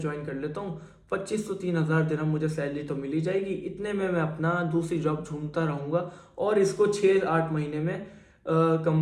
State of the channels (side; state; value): both; identical; correlation 1.00